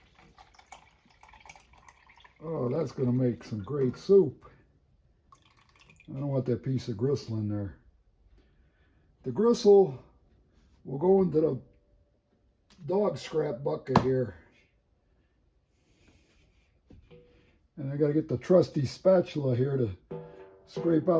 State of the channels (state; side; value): identical; both; correlation 1.00